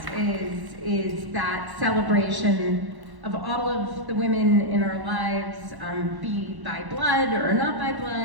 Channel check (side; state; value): left; late; 1.1 ms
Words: is that celebration of all of the women in our lives, be by blood or not by